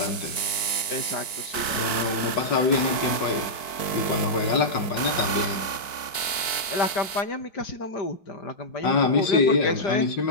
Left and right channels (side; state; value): right; late; 4.6 ms